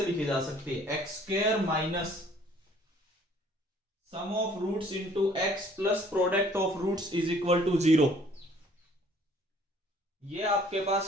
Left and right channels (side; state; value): both; normal; correlation 0.57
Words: लिखी जा सकती है, x square minus sum of roots into x plus product of roots is equal to 0। ये आपके